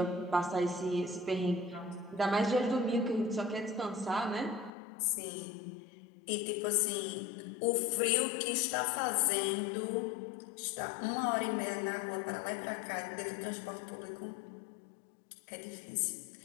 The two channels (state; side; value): drops out; right; at 4.7 s